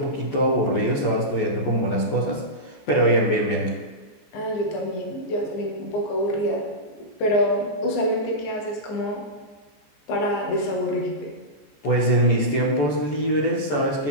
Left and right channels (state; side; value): late; right; 14 ms